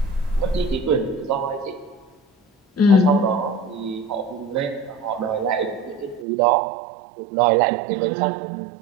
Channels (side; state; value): left; drops out; at 6.2 s